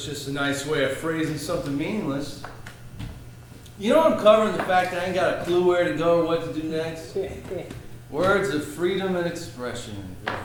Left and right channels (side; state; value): both; identical; correlation 1.00